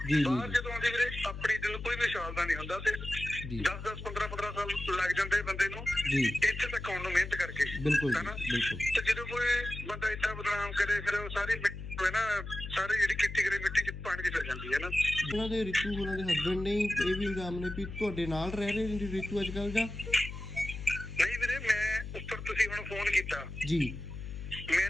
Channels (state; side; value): noise; left; hum, 9 dB below the sound